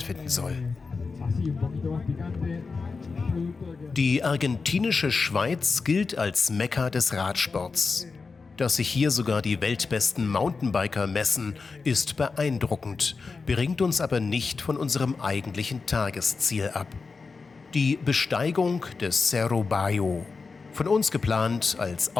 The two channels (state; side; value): quieter; right; 4.5 dB